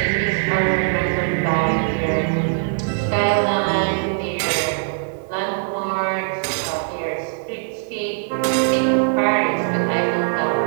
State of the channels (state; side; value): silent; left; digital silence